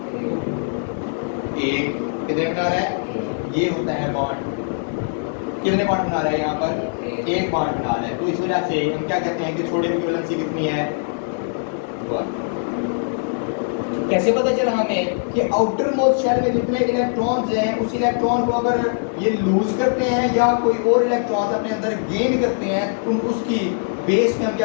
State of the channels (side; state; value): right; silent; 65 dB below the other